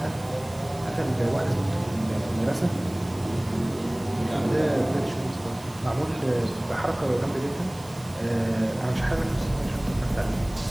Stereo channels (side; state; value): right; noise; hiss, 21 dB below the sound